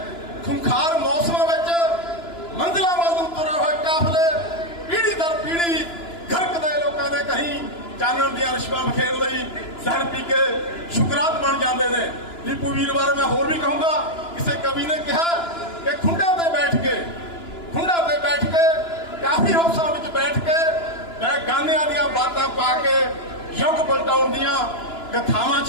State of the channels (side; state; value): right; late; 2.9 ms